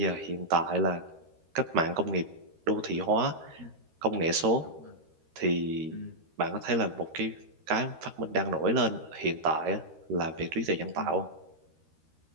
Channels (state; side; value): late; left; 13 ms